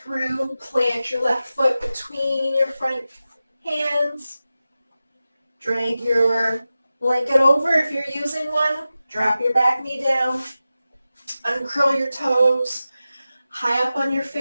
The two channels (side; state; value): both; inverted; correlation -0.94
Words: plant your left foot between your front hands. Drag your blanket over if you're using one. Drop your back knee down. Uncurl your toes. High up on your